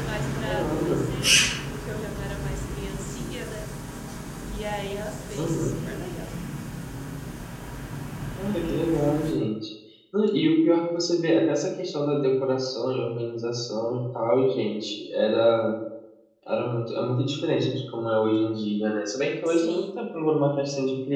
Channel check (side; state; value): both; identical; correlation 1.00